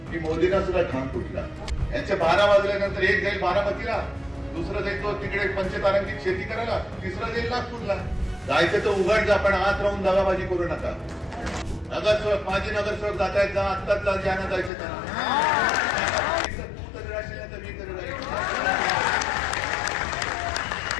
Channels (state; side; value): drops out; right; at 14.7 s